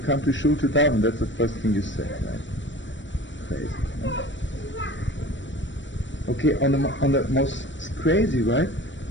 to shul to daven, that's the first thing you say, right? Crazy. Okay, on the most crazy, right?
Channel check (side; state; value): right; late; 0.54 ms